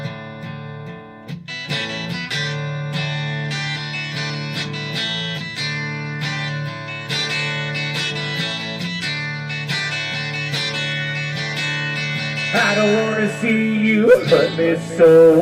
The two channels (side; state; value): both; identical; correlation 1.00